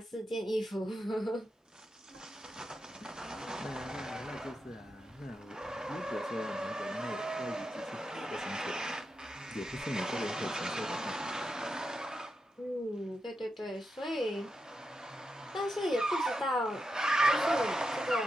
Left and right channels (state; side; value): normal; both; correlation 0.87